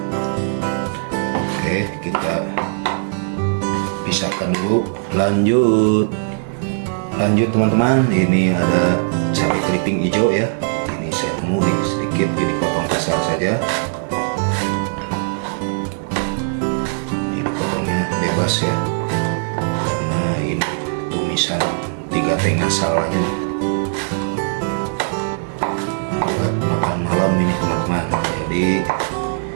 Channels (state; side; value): silent; left; digital silence